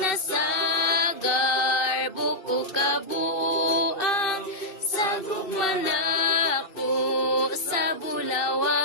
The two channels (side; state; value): right; late; 2.6 ms